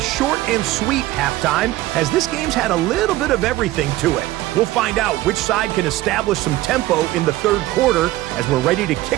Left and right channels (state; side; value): quieter; left; 16.7 dB